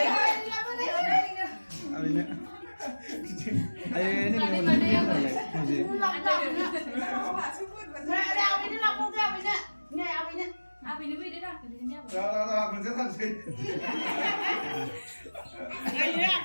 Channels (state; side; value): inverted; both; correlation -1.00